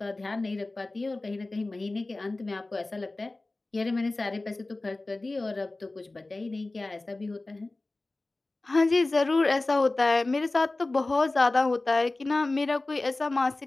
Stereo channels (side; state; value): right; quieter; 3.0 dB